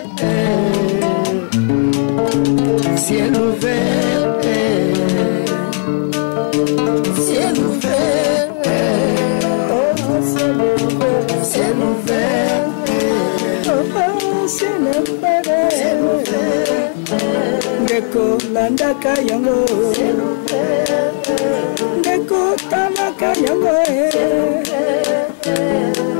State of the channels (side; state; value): right; silent; digital silence